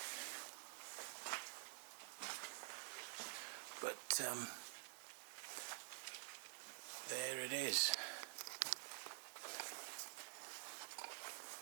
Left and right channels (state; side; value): silent; left; digital silence